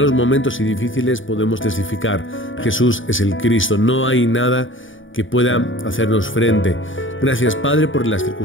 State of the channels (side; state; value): right; late; 0.57 ms